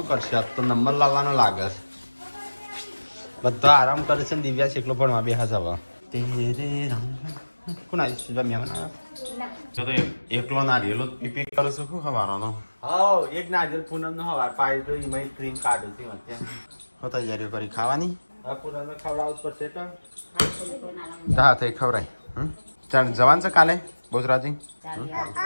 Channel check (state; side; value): inverted; both; correlation -1.00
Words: કરશે આજ તો નંબર લાવવાનો લાગે છે. બધા આરામ કરે છે ને દિવ્યાસ એકલો ભણવા બેસે છે હવે. કોણ આવી તો એકલો નારિયેલો પીપી કરું છું શું હવારનો હા એક નારિયેલ પૂનમ નો હવાર પાડી તો એમાં ક્રીમ કાઢું છું હું તૈયારીઓ કરી ખાવાની. પૂનમ ખવડાવવું પડશે તો હા થઈ ખવડાય. ચાલ જવાન છે કાલે બોજરાજી